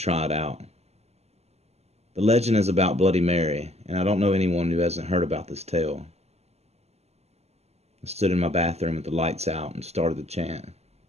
it out. The legend is about Bloody Mary, and I don't know anyone who hasn't heard about this tale. I stood in my bathroom with the lights out and started the chant.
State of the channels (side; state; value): left; late; 0.30 ms